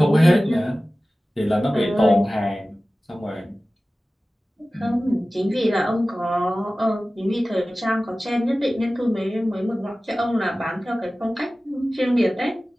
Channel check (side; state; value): both; normal; correlation 0.96